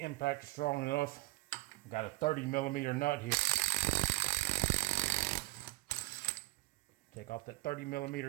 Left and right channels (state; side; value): quieter; left; 20.4 dB